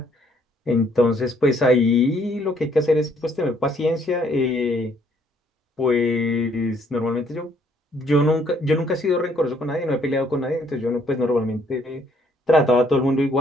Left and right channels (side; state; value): both; normal; correlation 0.66